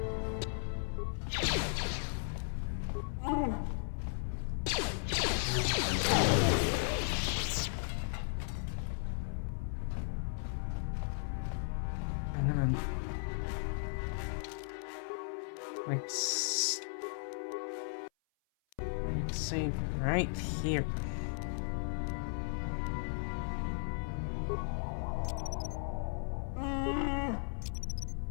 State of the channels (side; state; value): right; silent; 54 dB below the other